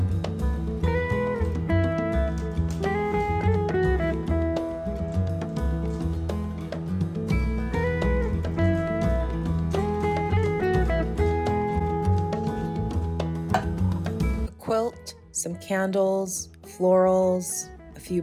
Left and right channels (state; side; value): identical; both; correlation 1.00